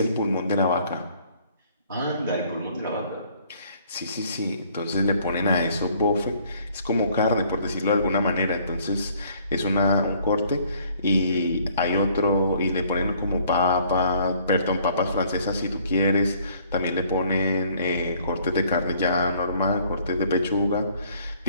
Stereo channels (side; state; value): both; inverted; correlation -0.61